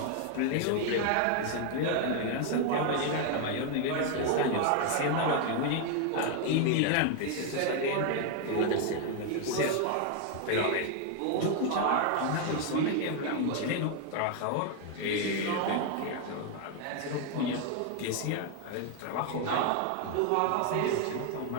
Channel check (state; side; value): different; both; correlation 0.01